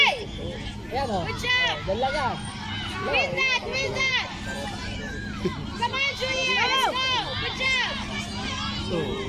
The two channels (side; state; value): both; identical; correlation 1.00